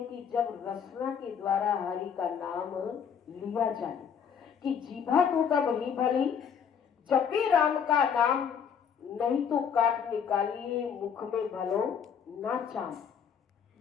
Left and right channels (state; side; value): quieter; right; 7.4 dB